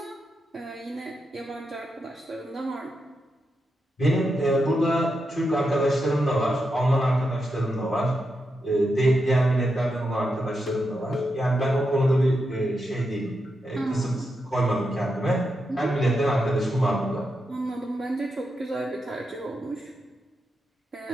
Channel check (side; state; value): both; normal; correlation 0.86